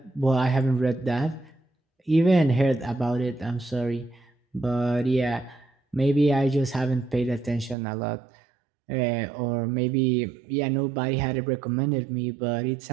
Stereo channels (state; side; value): drops out; left; at 7.8 s